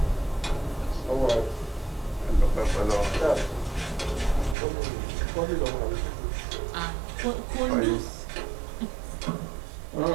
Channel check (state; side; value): drops out; left; at 4.5 s